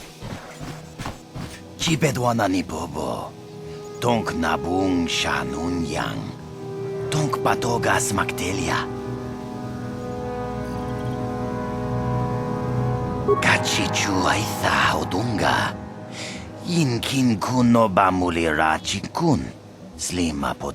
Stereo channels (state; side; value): identical; both; correlation 1.00